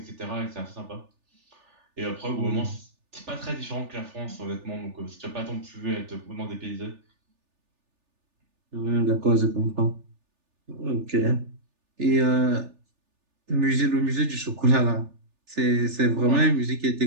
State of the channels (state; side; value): late; left; 3.4 ms